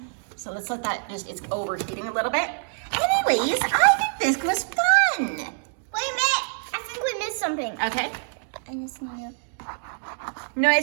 So let's let that it's overheating a little bit. Anyways, I think this was fun. Wait a minute. I think we missed something. Okay. I just need to No,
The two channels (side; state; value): left; silent; digital silence